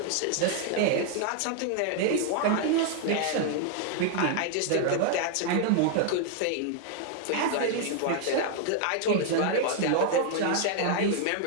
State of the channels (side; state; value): both; different; correlation 0.00